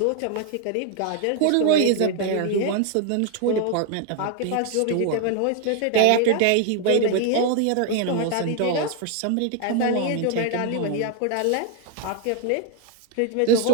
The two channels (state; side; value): different; both; correlation 0.00